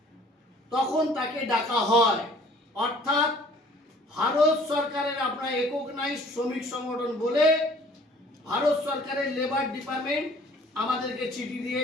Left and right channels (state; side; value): normal; both; correlation 0.54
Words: তখন তাকে ডাকা হয়। অর্থাৎ ভারত সরকারের আপনার রেকগনাইজ শ্রমিক সংগঠন বলে ভারত সরকারের লেবার ডিপার্টমেন্ট আমাদেরকে চিঠি দিয়ে